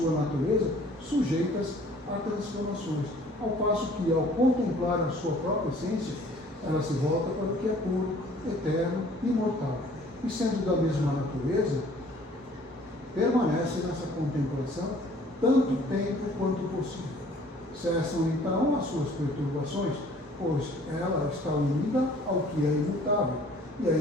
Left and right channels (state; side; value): normal; both; correlation 0.54